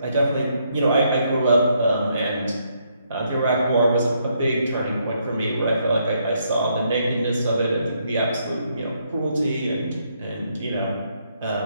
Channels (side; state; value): both; inverted; correlation -0.74